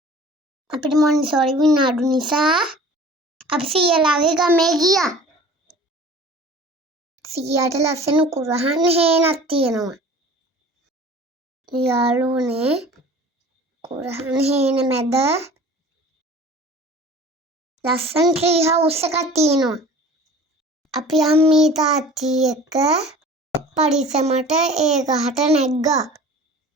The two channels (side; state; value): both; normal; correlation 0.44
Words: අපිට මොන්ටිසෝරි විනාඩු නිසා අපි සීයාලාගේ ගමේ ගියා. සීයාට ලස්සන කුරහන් හේනක් තියෙනවා. යාළුවනේ කුරහන් හේන මැද ලස්සන ට්‍රී හවුස් එකක් තියෙනවා. අපි අම්මී තාත්ති එක්ක පරිස්සමට ඒ ගහට නැග්ගා.